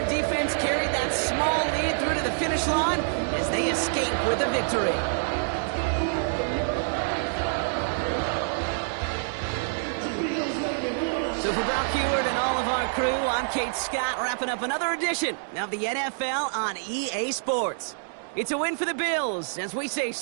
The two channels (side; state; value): left; silent; digital silence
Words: defense carried that small lead through to the finish line as they escape with a victory. So for Brock Heward and all of our crew, I'm Kate Scott, wrapping up another edition of the NFL on EA Sports. It's a win for the Bills as we say